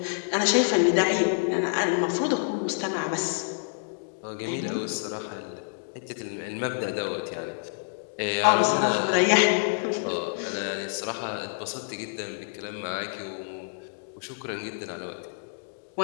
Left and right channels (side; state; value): right; silent; digital silence